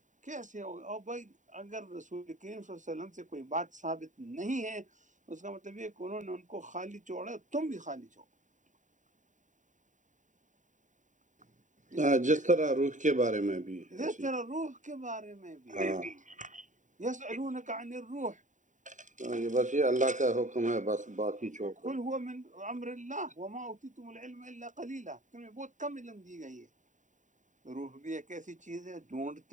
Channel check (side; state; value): left; late; 0.36 ms